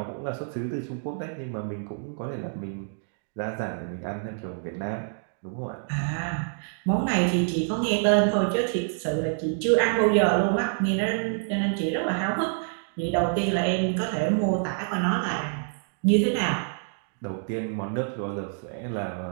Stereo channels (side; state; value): left; silent; digital silence